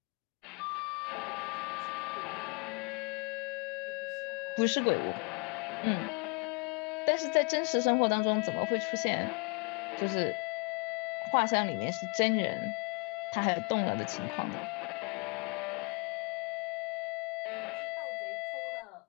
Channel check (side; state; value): right; quieter; 31.9 dB